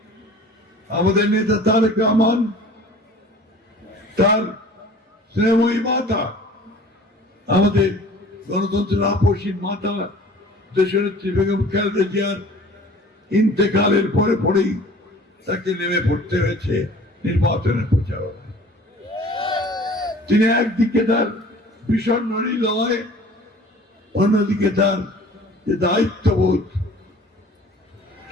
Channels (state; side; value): normal; both; correlation 0.47